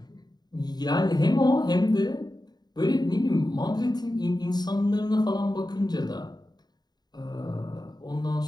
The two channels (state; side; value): late; right; 0.20 ms